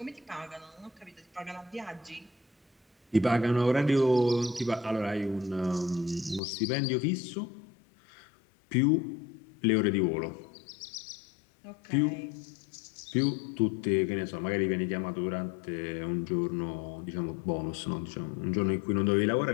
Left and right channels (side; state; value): right; drops out; at 6.4 s